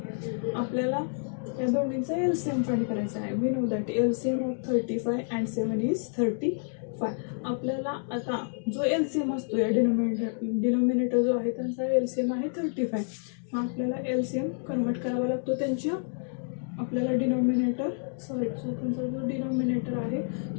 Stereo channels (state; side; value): silent; right; digital silence